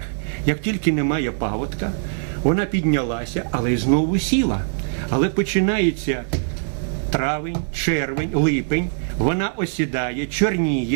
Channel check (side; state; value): left; silent; digital silence